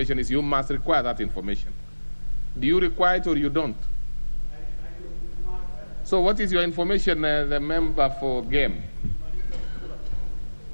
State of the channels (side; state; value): both; inverted; correlation -1.00